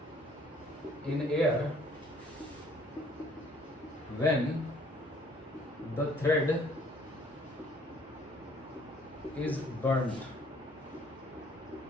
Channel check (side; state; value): both; normal; correlation 0.60